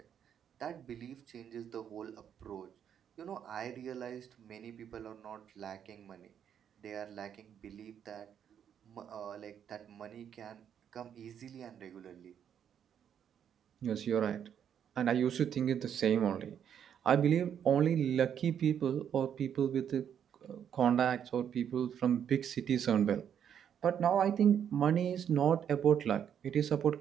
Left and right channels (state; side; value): quieter; left; 8.8 dB